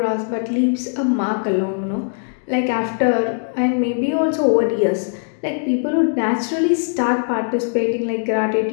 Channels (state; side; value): silent; right; digital silence